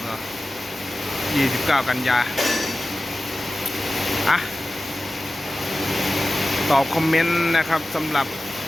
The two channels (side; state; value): both; normal; correlation 0.95